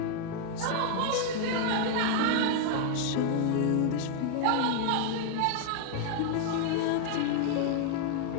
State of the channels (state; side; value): different; both; correlation 0.00